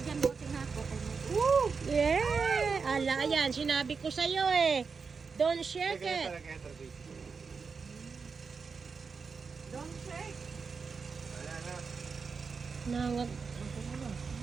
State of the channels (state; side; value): quieter; left; 5.2 dB